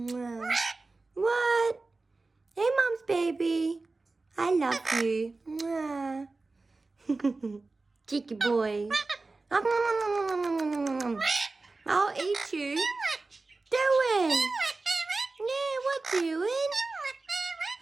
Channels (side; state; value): left; quieter; 3.5 dB